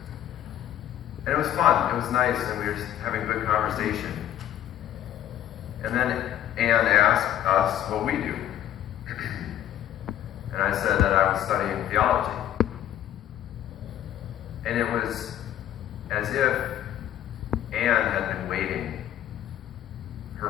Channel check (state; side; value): quieter; right; 11.6 dB